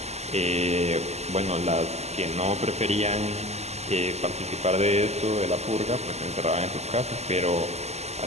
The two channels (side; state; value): left; late; 0.32 ms